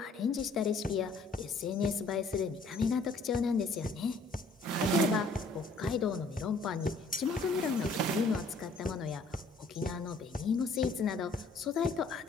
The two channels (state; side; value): quieter; right; 3.3 dB